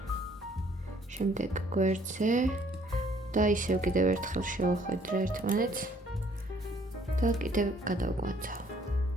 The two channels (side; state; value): both; normal; correlation 0.61